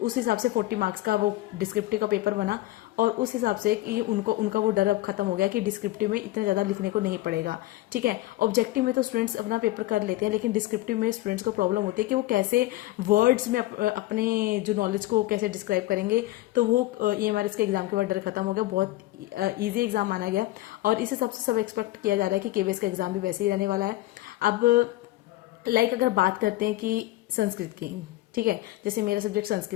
हिसाब से 40 मार्क्स का वो डिस्क्रिप्टिव का पेपर बना। और उस हिसाब से कि उनका वो डर अब खत्म हो गया कि डिस्क्रिप्टिव में इतना ज़्यादा लिखने को नहीं पड़ेगा, ठीक है। ऑब्जेक्टिव में तो स्टूडेंट्स अपना पेपर कर लेते हैं, लेकिन डिस्क्रिप्टिव में स्टूडेंट्स को प्रॉब्लम होती है कि वो कैसे वर्ड्स में अपने जो नॉलेज को कैसे डिस्क्राइब करेंगे। तो वो ईएमआरएस के एग्जाम के बाद डर खत्म हो गया, बहुत ईजी एग्जाम माना गया। और इस हिसाब से सब एक्सपेक्ट किया जा रहा है कि केवीएस का एग्जाम भी वैसे ही रहने वाला है। अब लाइक अगर बात करते हैं कि संस्कृत की, ठीक है, जैसे मेरा सब्जेक्ट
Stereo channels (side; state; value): right; quieter; 17.0 dB